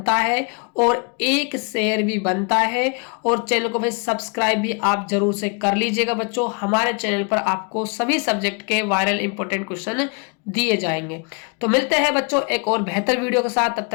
है और एक शेयर भी बनता है, और चैनल को भाई सब्सक्राइब भी आप जरूर से कर लीजिएगा। बच्चों हमारे चैनल पर आपको सभी सब्जेक्ट के वायरल इंपॉर्टेंट क्वेश्चन दिए जाएंगे। तो मिलते हैं बच्चों एक और बेहतर वीडियो के साथ, तब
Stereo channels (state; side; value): quieter; right; 35.8 dB